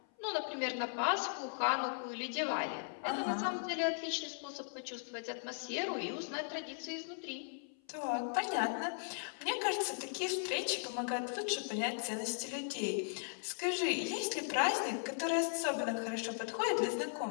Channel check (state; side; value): silent; right; 53 dB below the other